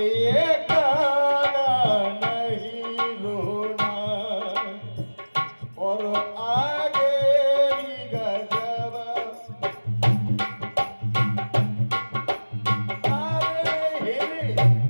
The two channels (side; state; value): both; inverted; correlation -1.00